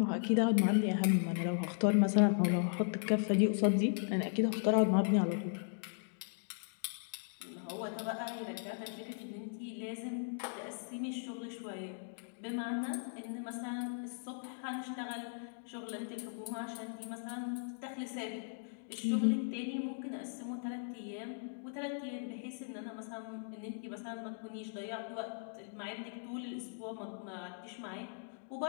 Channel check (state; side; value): silent; right; digital silence